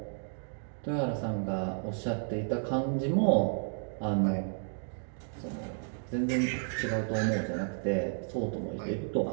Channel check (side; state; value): left; silent; digital silence